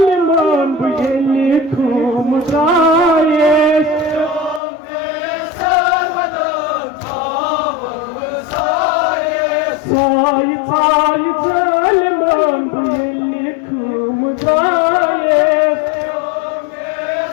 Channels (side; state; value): right; drops out; at 4.6 s